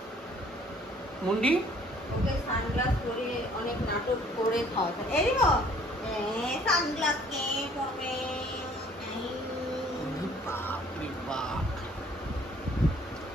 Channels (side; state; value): both; normal; correlation 0.57